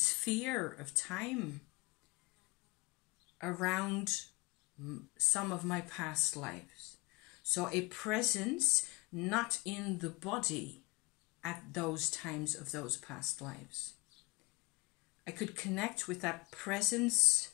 of time around some of my past lives. So a presence not in the body at those times of those past lives. I could connect with that presence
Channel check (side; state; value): right; quieter; 25.9 dB